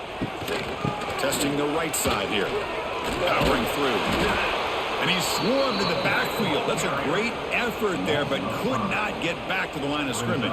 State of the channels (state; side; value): identical; both; correlation 1.00